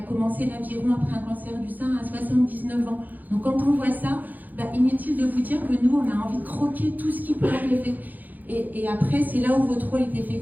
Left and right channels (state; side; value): late; left; 0.083 ms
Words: commencé l'aviron après un cancer du sein à 79 ans. Donc quand on voit ça, inutile de vous dire que nous, on a envie de croquer tout ce qui peut arriver. Et après, c'est là où votre rôle est